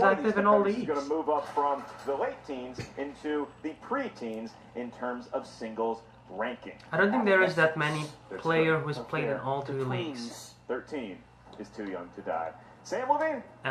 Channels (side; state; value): both; identical; correlation 1.00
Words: of active these in all competitors is going to leagues. move up from the late teens into the pre-teens in terms of singles ranking. I don't think there is that many player who's played in all The three leagues. twins. 13 is too young to die. Sam Levine?